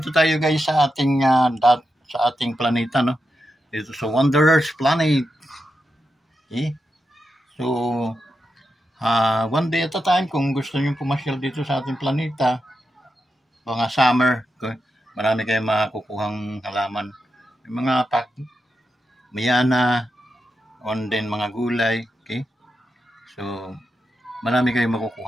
tayo guys sa ating planeta, no? Dito sa Wanderers Planet. Okay? So, one day at a time, kung gusto niyo pumasyal dito sa ating planeta, mga summer, okay? Marami kayong makukuhang halaman. Yung mga mayana, on din mga gulay, okay? So, marami kayong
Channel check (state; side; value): normal; both; correlation 0.87